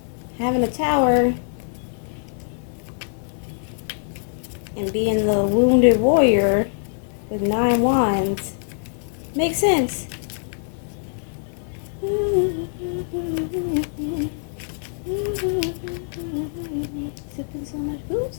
Having a tower and being the wounded warrior with 9 wands makes sense. Sipping so much booze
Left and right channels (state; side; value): silent; right; digital silence